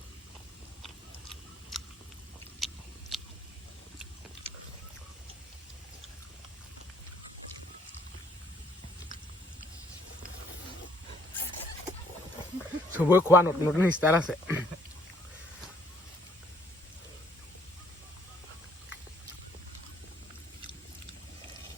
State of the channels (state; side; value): normal; both; correlation 0.63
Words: চবৰে খোৱা নতুন নতুন ষ্টাইল আছে